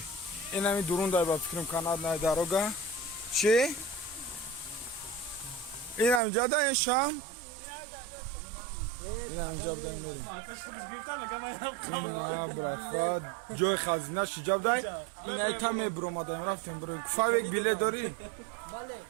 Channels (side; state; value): left; drops out; at 6.2 s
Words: این همی درون دای با فکرم کاناد نای داروگا چی؟ این همی جا دای شام؟ این همی جا بدای میریم این ها براتفا جای خزینه شی جا بدای این های تمه برو ما دایم رفتیم برو فاویک بیله داری؟